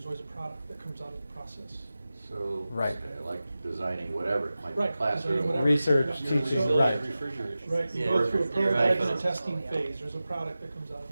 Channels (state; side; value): inverted; both; correlation -0.95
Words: always a product that comes out of the process. So, Right. like designing whatever, it might be Right, classroom. designing whatever. Research, Yeah. teaching, So- right. Right, you Yeah. go through a You're right. prototype and a testing phase, there's a product that comes out of